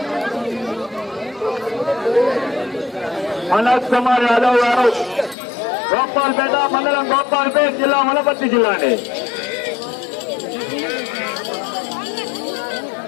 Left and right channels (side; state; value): right; drops out; at 5.4 s